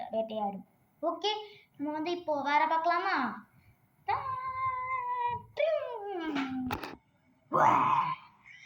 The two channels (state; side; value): identical; both; correlation 1.00